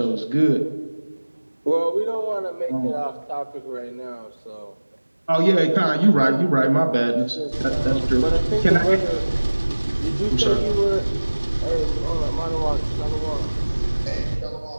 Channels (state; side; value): inverted; both; correlation -1.00